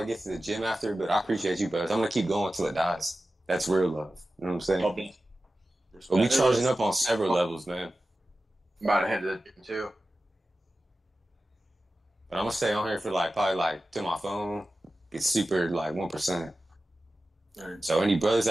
get to the gym after, but I appreciate you, brothers. I'm gonna keep going until it dies. That's real love. You know what I'm saying? God bless. But we charging up on several levels, man. I'm about to head to the gym too. But I'm gonna stay on here for like probably like to my phone. Get super like 1%. Alright. So any brothers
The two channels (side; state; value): both; normal; correlation 0.94